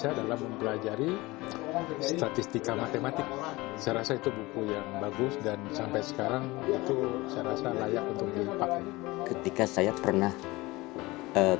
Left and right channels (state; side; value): quieter; right; 21.4 dB